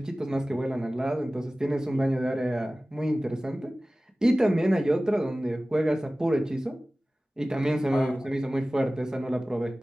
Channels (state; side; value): normal; both; correlation 0.97